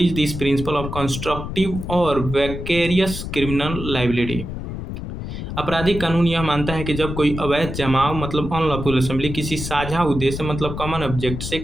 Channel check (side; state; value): left; noise; rumble, 7 dB below the sound